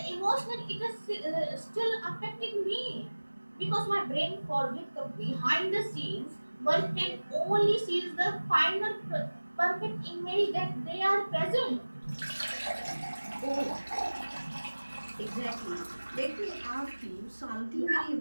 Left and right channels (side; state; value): both; inverted; correlation -1.00